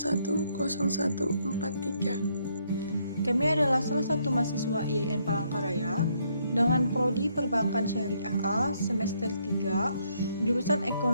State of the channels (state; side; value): inverted; both; correlation -0.72